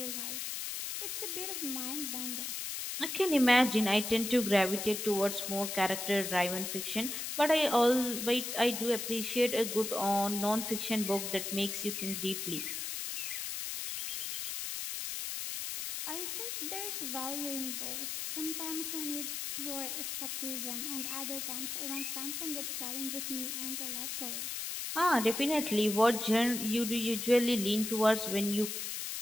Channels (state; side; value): noise; left; hiss, 4 dB below the sound